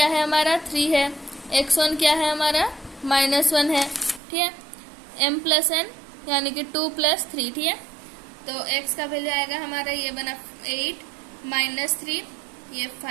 है हमारा 3 है, x1 क्या है हमारा -1 है। ठीक है, m प्लस n यानी कि 2 + 3। ठीक है, तो x का वैल्यू आएगा हमारा, ये बना 8 -3 ये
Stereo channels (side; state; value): left; drops out; at 4.2 s